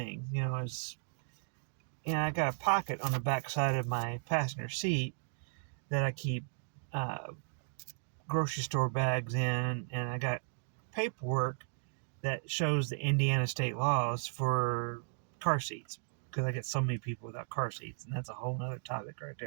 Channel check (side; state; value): left; silent; digital silence